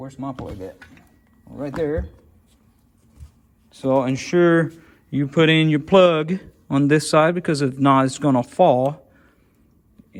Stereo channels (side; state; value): both; identical; correlation 1.00